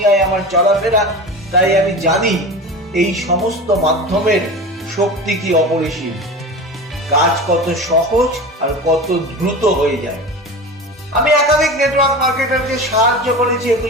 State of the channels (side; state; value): both; normal; correlation 0.31